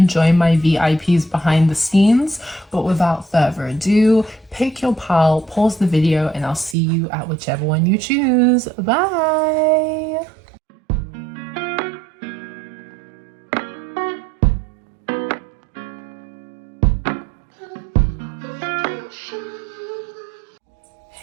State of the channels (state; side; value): drops out; left; at 6.8 s